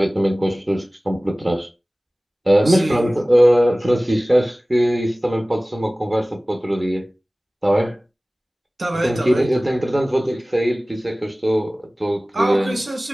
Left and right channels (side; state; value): both; normal; correlation 0.98